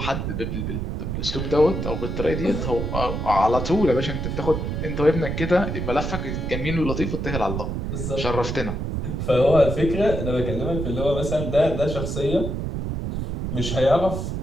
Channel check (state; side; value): noise; right; rumble, 3 dB below the sound